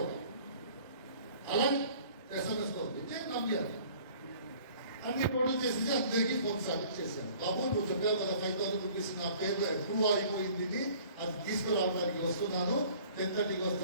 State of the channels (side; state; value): both; inverted; correlation -0.51